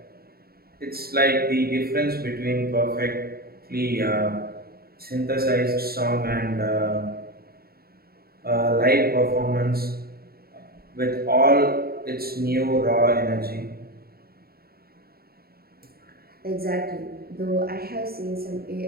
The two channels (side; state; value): left; late; 0.45 ms